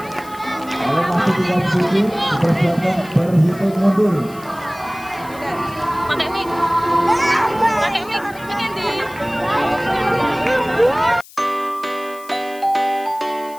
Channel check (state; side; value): noise; left; hiss, 21 dB below the sound